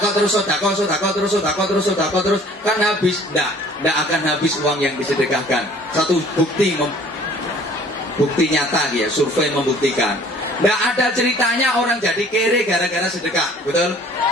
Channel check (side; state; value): both; normal; correlation 0.52